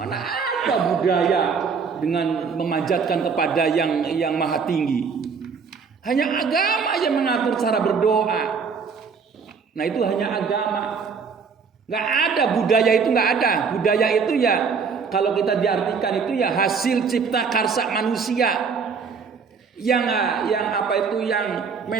ada budaya dengan memanjatkan kepada yang maha tinggi. Hanya agama yang mengatur cara berdoa. Nah itu hanya agama. Gak ada budaya itu, gak ada. Budaya itu ya kalau kita diartikan itu ya hasil cipta karsa manusia. Yang apa itu yang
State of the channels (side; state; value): left; quieter; 5.6 dB